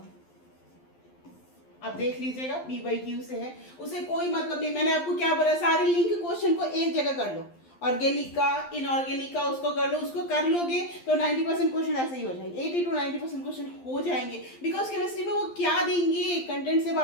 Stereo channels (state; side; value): late; right; 12 ms